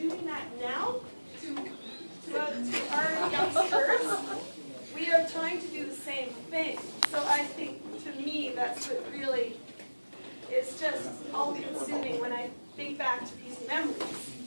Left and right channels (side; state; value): both; inverted; correlation -1.00